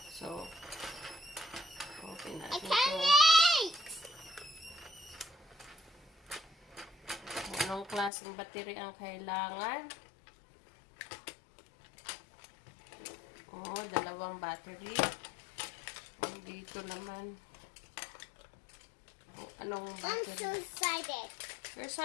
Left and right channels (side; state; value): right; drops out; at 8.1 s